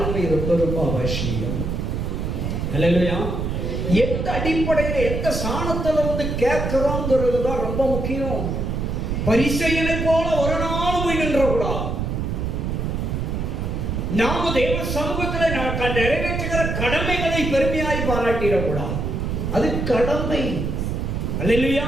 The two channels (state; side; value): noise; right; rumble, 2 dB below the sound